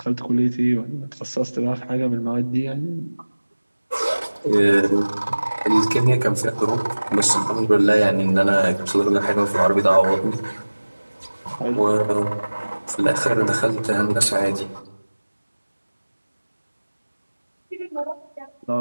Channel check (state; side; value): inverted; both; correlation -1.00